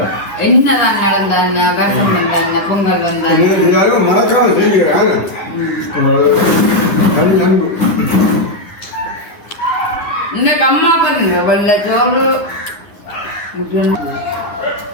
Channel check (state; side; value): late; right; 10 ms